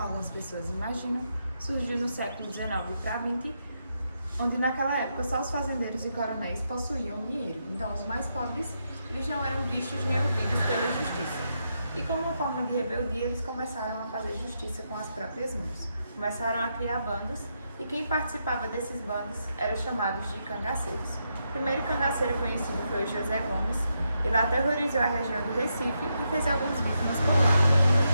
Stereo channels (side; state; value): both; inverted; correlation -0.82